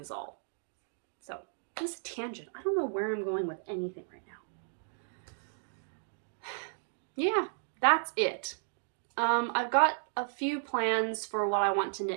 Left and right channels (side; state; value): left; silent; digital silence